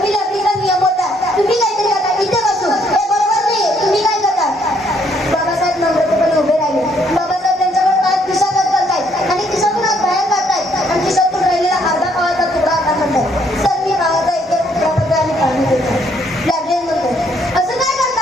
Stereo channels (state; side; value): normal; both; correlation 0.68